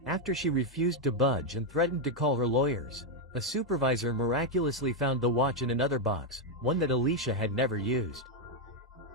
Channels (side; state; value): both; normal; correlation 0.02